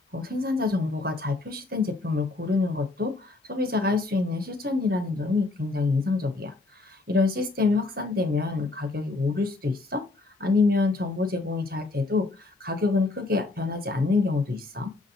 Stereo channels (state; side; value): quieter; right; 3.3 dB